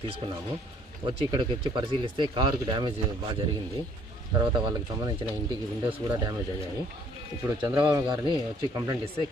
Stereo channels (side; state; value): both; normal; correlation 0.61